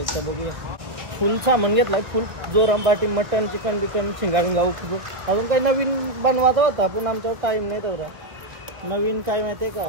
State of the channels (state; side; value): late; left; 1.2 ms